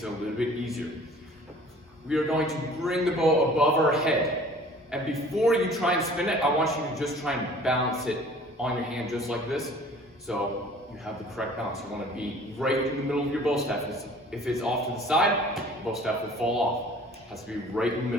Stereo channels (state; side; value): normal; both; correlation 0.49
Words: it a little bit easier. We are going to bring the bow above our head. And before you try and spin it, I want you to just try and balance it on your hand just like this. So you have the correct balance. You want to be right in the middle of your bow staff. If it's off to the side, the bow staff will fall off. It has to be right in the